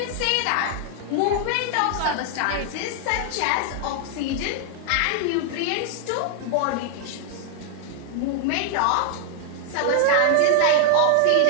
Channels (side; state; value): both; different; correlation 0.00